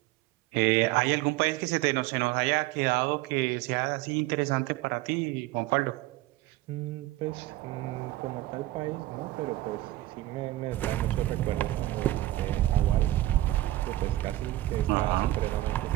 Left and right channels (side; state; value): left; quieter; 16.3 dB